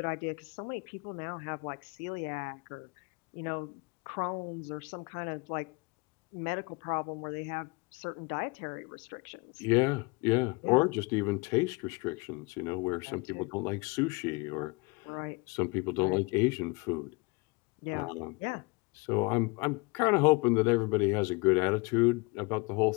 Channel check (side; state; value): right; quieter; 28.0 dB